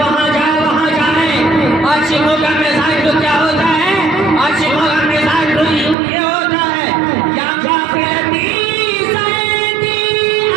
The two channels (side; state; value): left; drops out; at 6.0 s